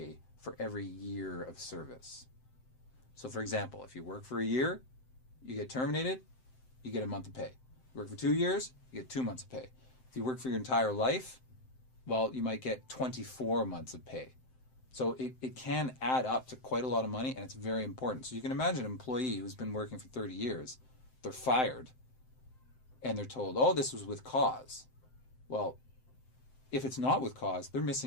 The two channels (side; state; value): right; late; 7.7 ms